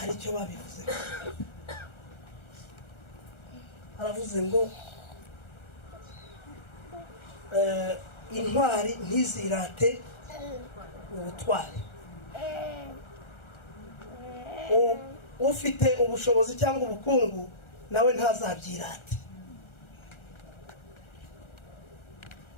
icyo babivuze. Aravuze ngo intwari ntizirate ubutwari. Ufite ubushobozi cyangwa ubukungu nawe ntazabyirate.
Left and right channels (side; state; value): right; late; 1.4 ms